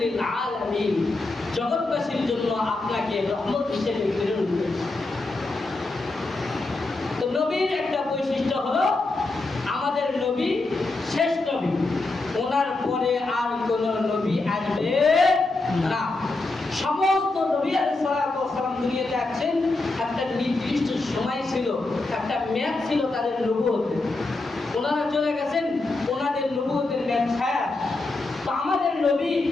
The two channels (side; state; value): right; quieter; 3.2 dB